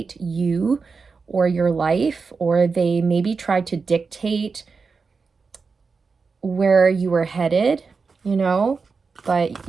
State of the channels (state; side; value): quieter; left; 4.8 dB